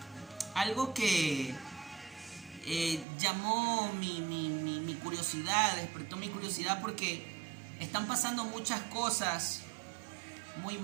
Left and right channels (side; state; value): left; drops out; at 3.1 s